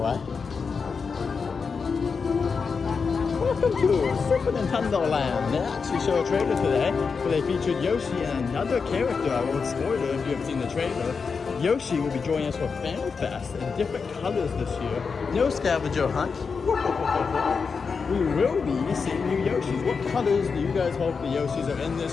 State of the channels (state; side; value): quieter; right; 5.3 dB